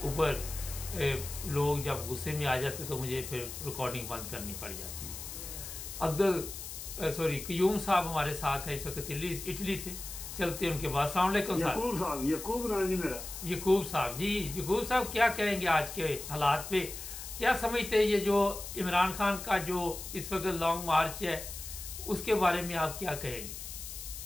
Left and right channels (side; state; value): left; noise; hiss, 9 dB below the sound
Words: ऊपर लोग जब गुस्से में आ जाते तो मुझे फिर रिकॉर्डिंग बंद करनी पड़ जाती है। क्यूम साहब हमारे साथ है इस वक्त इटली से। चलते हैं उनके बाद। अस्सलाम वालेकुम साहब। यकूब नाम जी मेरा। यकूब साहब जी, यकूब साहब क्या कहेंगे आज के हालात पे? क्या समझते हैं ये जो इमरान खान का जो इस वक्त लॉन्ग मार्च है उसके बारे में आप क्या कहेंगे?